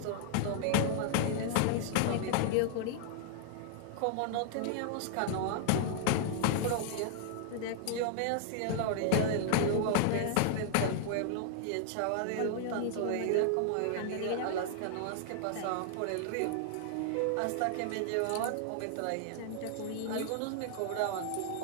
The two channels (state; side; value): different; both; correlation -0.01